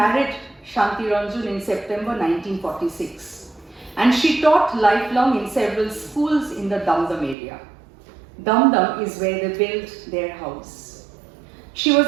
Santiranjan in September 1946, and she taught lifelong in several schools in the Dum Dum area. Dum Dum is where they built their house. She was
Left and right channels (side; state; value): left; drops out; at 7.4 s